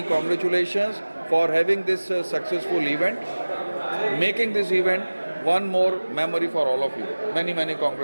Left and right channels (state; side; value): inverted; both; correlation -1.00